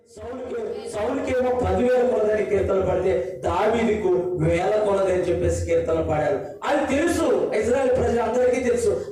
సౌలుకేమో 10,000 కొలదని కీర్తనలు పడితే దావీదుకు 1000 కొలదని చెప్పేసి కీర్తనలు పాడారు. అది తెలుసు, ఇశ్రాయేల్ ప్రజలందరికీ తెలుసు.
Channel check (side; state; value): both; identical; correlation 1.00